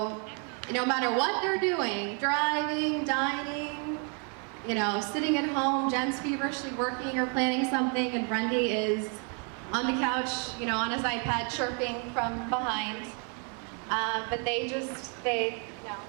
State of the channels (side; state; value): left; quieter; 38.6 dB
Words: no matter what they're doing, driving, dining, you know, sitting at home, Jen's feverishly working or planning something, and Brendy is on the couch, you know, on his iPad chirping from behind. But they